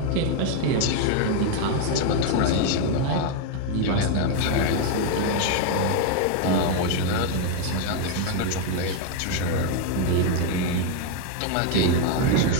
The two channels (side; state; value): both; different; correlation 0.01